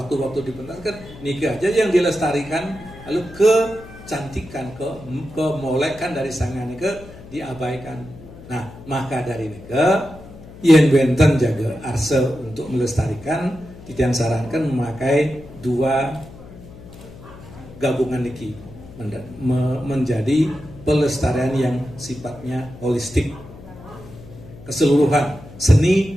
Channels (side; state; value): left; noise; hum, 18 dB below the sound